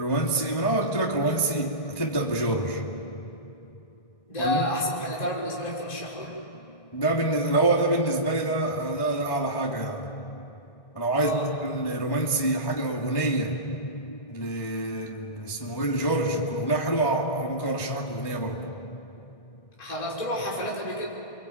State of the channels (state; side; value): late; right; 1.6 ms